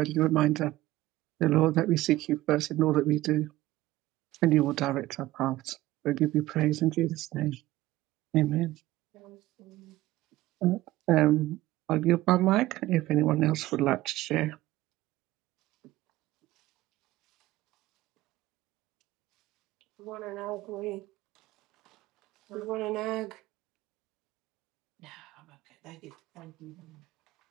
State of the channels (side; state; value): left; quieter; 16.8 dB